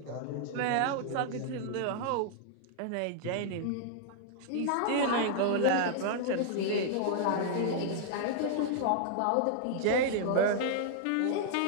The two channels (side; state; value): both; different; correlation -0.01